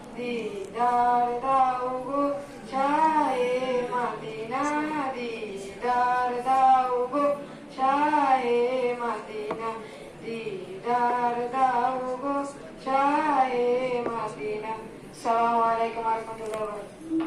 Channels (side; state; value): both; identical; correlation 1.00